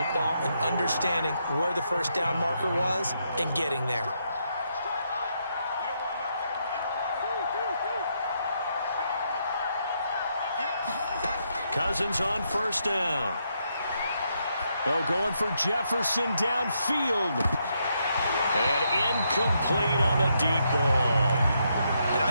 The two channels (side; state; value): both; inverted; correlation -0.78